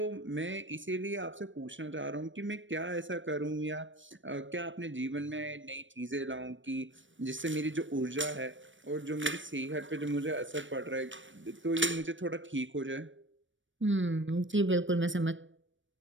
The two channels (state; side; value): late; left; 0.56 ms